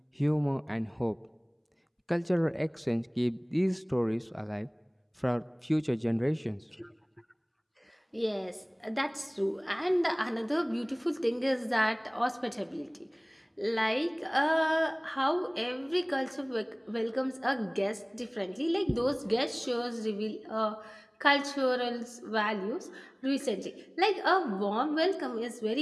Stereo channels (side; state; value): both; identical; correlation 1.00